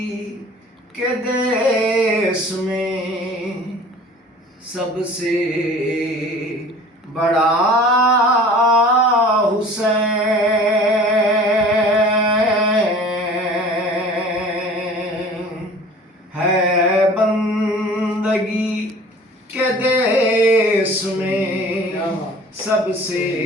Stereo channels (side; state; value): both; normal; correlation 0.45